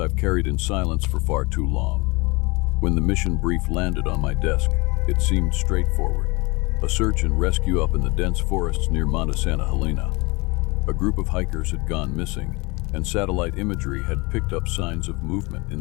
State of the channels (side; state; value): right; quieter; 26.1 dB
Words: carried in silence for far too long. When the mission brief landed on my desk, it seemed straightforward. A search and rescue up in the dense forests near Monte Santa Helena. A group of hikers had gone missing, and satellite imagery had picked up signs of movement